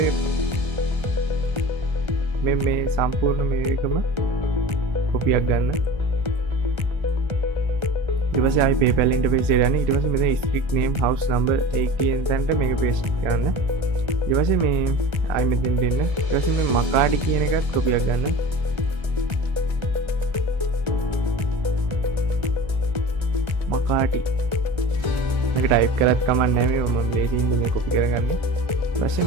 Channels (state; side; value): late; left; 1.3 ms